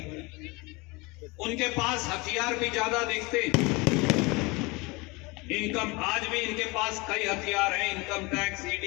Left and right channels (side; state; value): right; quieter; 25.5 dB